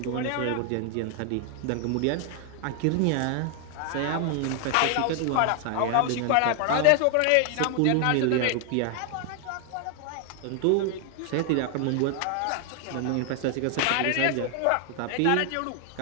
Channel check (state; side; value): different; both; correlation 0.00